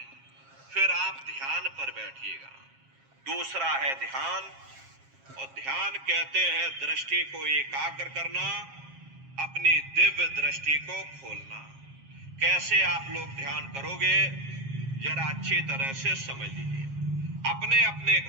फिर आप ध्यान पर बैठिएगा। दूसरा है ध्यान, और ध्यान कहते हैं दृष्टि को एकाग्र करना, अपनी दिव्य दृष्टि को खोलना। कैसे आप लोग ध्यान करोगे, जरा अच्छी तरह से समझ लीजिए। अपने अपने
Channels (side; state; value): left; late; 7.4 ms